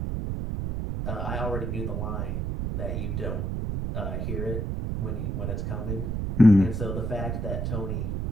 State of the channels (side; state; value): right; noise; rumble, 1 dB below the sound